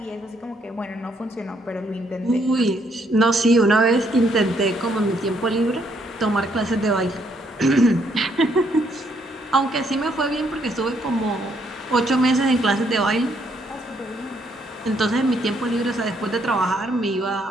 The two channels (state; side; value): normal; both; correlation 0.71